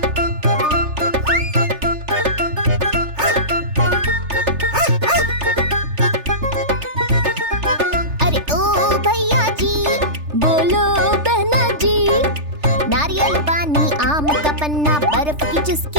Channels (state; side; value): late; left; 3.4 ms